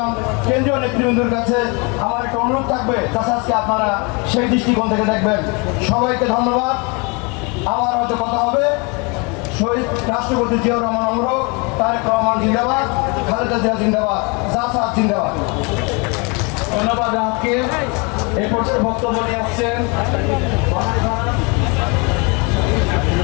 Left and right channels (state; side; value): quieter; right; 30.7 dB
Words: কেন্দ্রীয় নেতৃবৃন্দের কাছে আমার একটা অনুরোধ থাকবে, জাসাসকে আপনারা সেই দৃষ্টিকোণ থেকে দেখবেন। সবাইকে ধন্যবাদ। আমার হয়তো কথা হবে। শহীদ রাষ্ট্রপতি জিয়াউর রহমান অমর, তারেক রহমান জিন্দাবাদ, খালেদা জিয়া জিন্দাবাদ, জাসাস জিন্দাবাদ। ধন্যবাদ রাতকে। এই পর্যায়ে বক্তব্য নিয়ে আসছেন